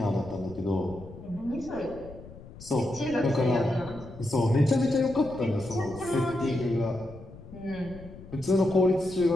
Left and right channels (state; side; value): noise; left; rumble, 17 dB below the sound